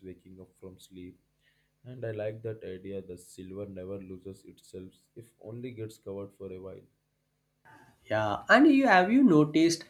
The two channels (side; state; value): both; identical; correlation 1.00